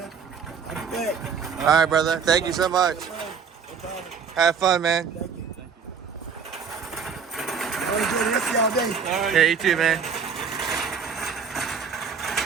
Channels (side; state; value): left; quieter; 6.3 dB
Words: I'll be back. All right, brother. Thank you so much. No problem. Have fun, man. Thank you. Have a good rest of y'all day. All right. Yeah, you too, man.